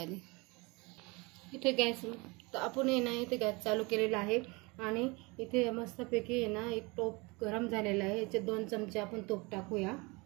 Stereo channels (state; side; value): quieter; left; 26.4 dB